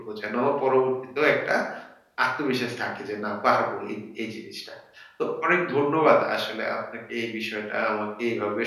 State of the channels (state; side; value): identical; both; correlation 1.00